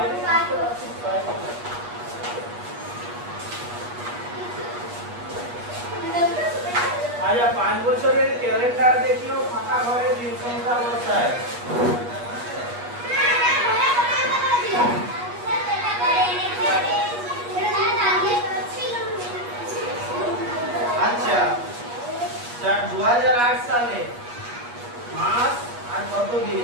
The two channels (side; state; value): left; late; 8.3 ms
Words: আচ্ছা 5 বছরের ক্যালেন্ডার দেখিও ফাঁকা ঘরে দিন সংখ্যা বসায় আচ্ছা 2008 সালে মাস আর কত